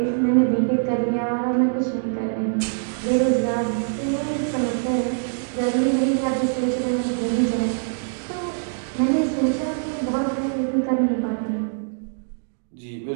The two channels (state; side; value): silent; left; digital silence